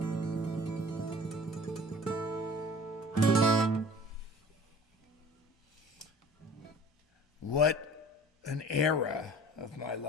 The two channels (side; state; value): both; normal; correlation 0.46